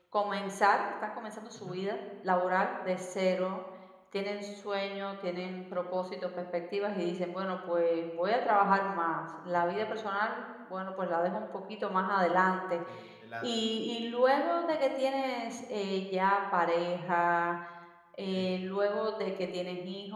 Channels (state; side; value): identical; both; correlation 1.00